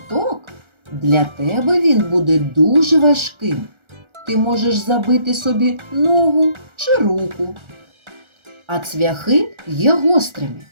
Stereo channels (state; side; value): late; left; 1.3 ms